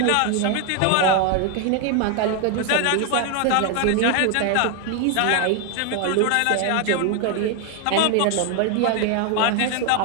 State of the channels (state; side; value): different; both; correlation 0.01